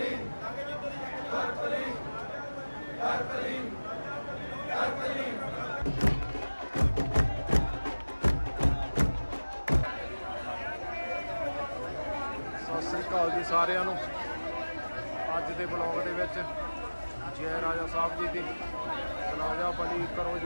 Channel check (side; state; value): both; inverted; correlation -1.00